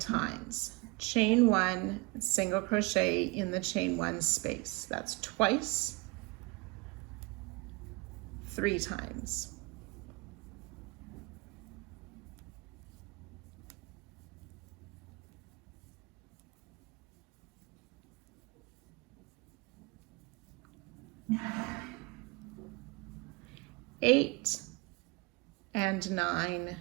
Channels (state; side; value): quieter; left; 25.0 dB